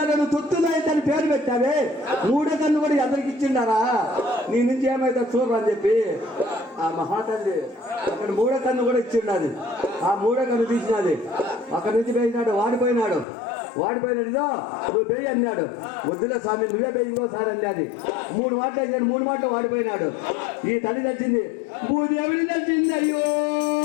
నువ్వు తొత్తులైతే అని పేరు పెట్టావే, 3వ కన్ను కూడా ఎదరికి ఇచ్చిండారా, నీ నుంచి ఏమైతే చూడరు అని చెప్పి ఆ మహాతల్లి అక్కడ 3వ కన్ను కూడా ఇచ్చిండాది. ఆ 3వ కన్ను తీసినది. అక్కడి నుంచి పోయినాడు, వాడిపోయినాడు. ఇదో నువ్వు పేయి అన్నాడు. వద్దులే స్వామి, నువ్వే పేయి ఇంకోసారి అన్నది. 3 మాటలు వేసాడు, 3 మాటలు వాడిపోయినాడు. ఈ తల్లి తెలిసింది, భూదేవిని తెలిసింది. అయ్యో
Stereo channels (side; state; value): right; drops out; at 13.2 s